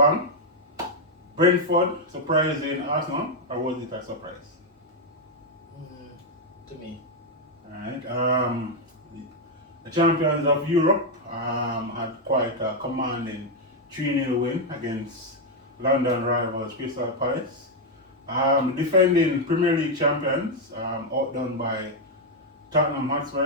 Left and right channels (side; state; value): both; normal; correlation 0.01